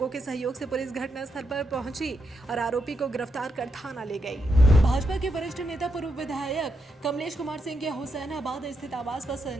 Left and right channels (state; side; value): normal; both; correlation 0.82